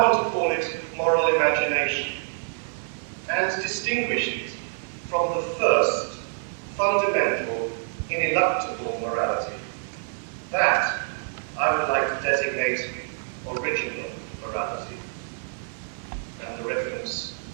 to call it moral imagination, and distinguish it from the first, fundamental, ineluctable morality. That I would like to designate original morality, and the reference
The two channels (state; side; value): silent; left; digital silence